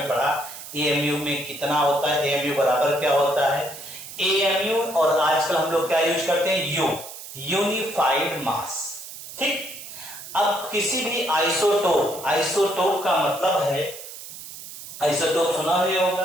पढ़ा, एएमयू में कितना होता है, एएमयू बराबर क्या होता है, एएमयू। और आजकल हम लोग क्या यूज करते हैं, यू, यूनिफाइड मास, ठीक। अब किसी भी आइसोटोप, आइसोटोप का मतलब है, आइसोटोप सुना ही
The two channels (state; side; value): noise; right; hiss, 13 dB below the sound